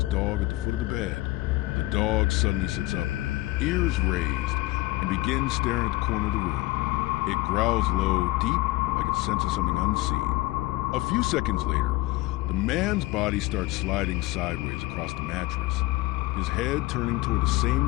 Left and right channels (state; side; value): quieter; right; 19.3 dB